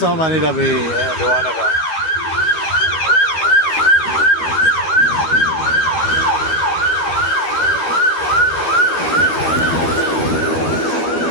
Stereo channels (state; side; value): late; right; 12 ms